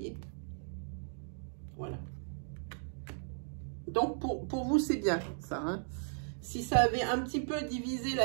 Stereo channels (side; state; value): left; silent; digital silence